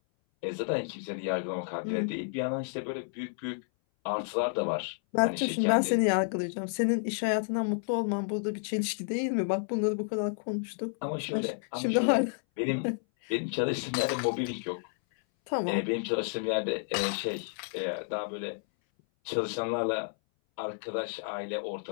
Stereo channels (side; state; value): right; silent; 57 dB below the other